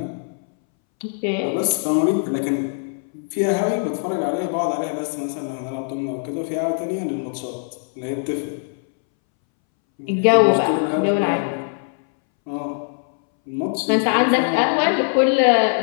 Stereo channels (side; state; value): right; silent; 63 dB below the other